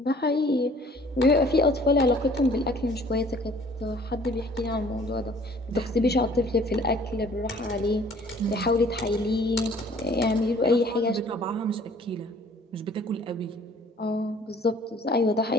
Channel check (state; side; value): normal; both; correlation 0.54